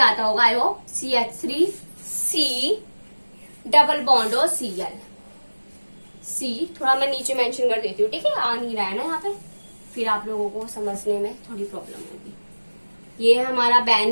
होगा, I hope, CH3C double bond और Cl। C थोड़ा मैं नीचे मेंशन कर देती हूँ, ठीक है, आ नहीं रहा है ना यहाँ पे, फिर आप लोगों को समझने में थोड़ी प्रॉब्लम होगी। ये है हमारा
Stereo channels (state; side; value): inverted; both; correlation -1.00